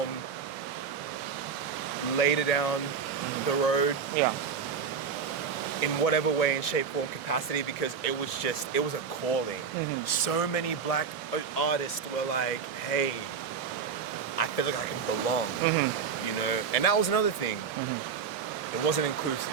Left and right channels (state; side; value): quieter; left; 6.3 dB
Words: later down the road. In whatever way, in shape, form, capacity, because it was a calling. So many black artists were like, hey, I feel like I can belong, you know? And that was another thing. It wasn't inclusive.